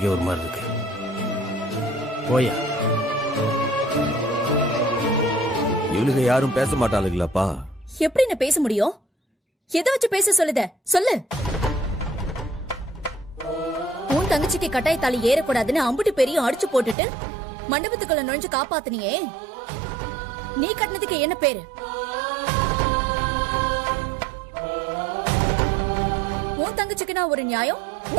ஒரு மாதிரி இருக்கு. போய்யா. இவளுக்கு யாரும் பேச மாட்டாளுங்களாப்பா? எப்படி என்ன பேச முடியும்? எதை வச்சு பேச சொல்லுத சொல்லு. உன் தங்கச்சிக்கு கட்டாய தாலி ஏறக்கூடாதுன்னு அம்புட்டு பெரிய அடிச்சு போட்டுட்டு மண்டபத்துக்குள்ள நுழைஞ்சு காப்பாத்தினியே, நீ கட்டினதுக்கு என்ன பேரு? உன் தங்கச்சிக்கு நான் ஒரு நியாயம்,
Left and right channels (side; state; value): left; drops out; at 16.9 s